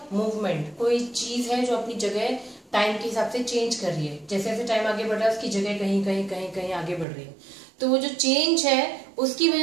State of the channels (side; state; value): left; drops out; at 7.1 s